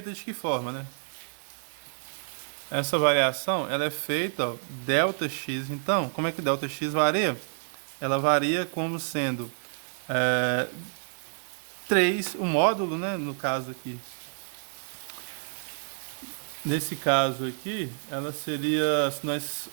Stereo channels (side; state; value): left; silent; 59 dB below the other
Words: de que forma, né? Essa variação, ela é feita, ó, ΔX. Então, como é que ΔX varia? Ela varia como sendo 3, o módulo, né? No caso aqui. Nesse caso aqui, ela seria, se nós,